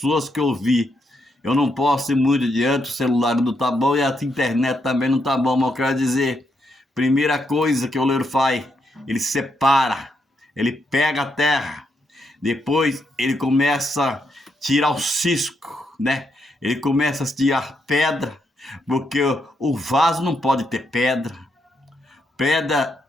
que eu vi. Eu não posso ir muito adiante, o celular não tá bom e a internet também não tá bom, mas eu quero dizer, primeira coisa que o oleiro faz, ele separa, ele pega a terra, depois ele começa a tirar o cisco, né? Ele começa a tirar pedra, porque o vaso não pode ter pedra. Pedra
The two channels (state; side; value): normal; both; correlation 0.79